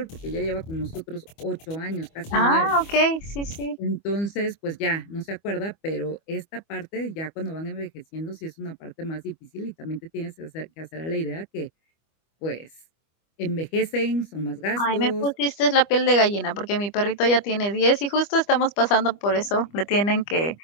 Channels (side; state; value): right; late; 25 ms